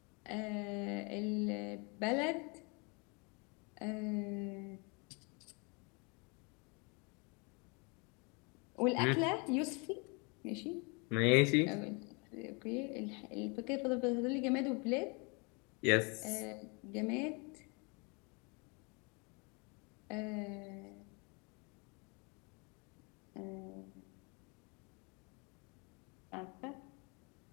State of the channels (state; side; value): quieter; right; 31.5 dB